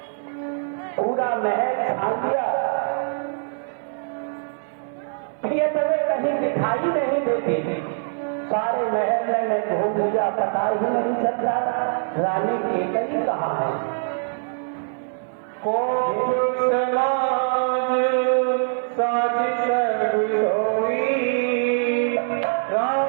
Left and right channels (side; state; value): left; silent; digital silence